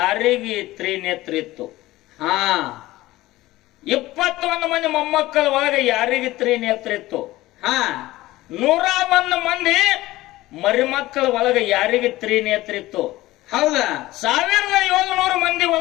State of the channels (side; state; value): right; quieter; 17.5 dB